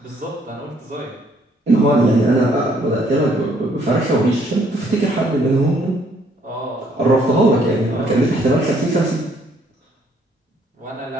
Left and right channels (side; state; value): both; normal; correlation 0.66